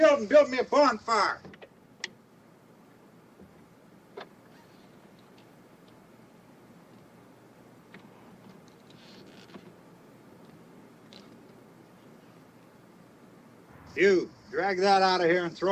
and build me a bonfire? You, drag that out of here and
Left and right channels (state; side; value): identical; both; correlation 1.00